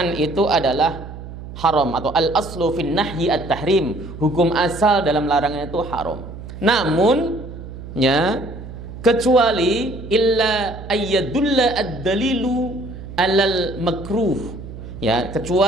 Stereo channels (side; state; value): right; noise; hum, 12 dB below the sound